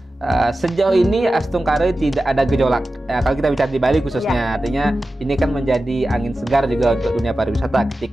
Sejauh ini Astungkare tidak ada gejolak. Kalau kita bicara di Bali khususnya, artinya ini kan menjadi angin segar juga untuk dunia pariwisata.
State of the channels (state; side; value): normal; both; correlation 0.94